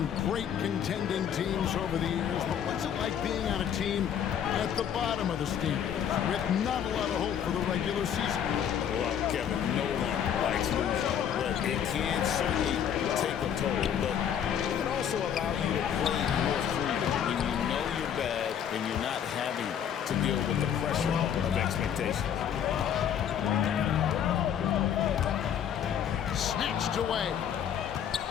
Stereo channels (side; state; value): right; quieter; 8.9 dB